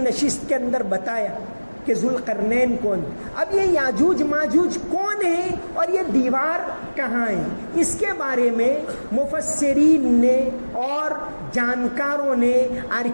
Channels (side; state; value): both; inverted; correlation -1.00